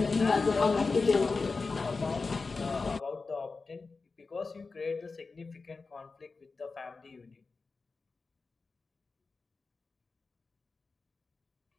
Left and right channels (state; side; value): quieter; right; 4.2 dB